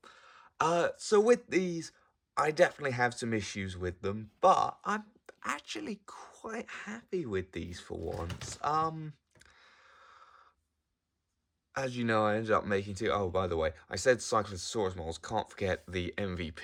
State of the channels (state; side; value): identical; both; correlation 1.00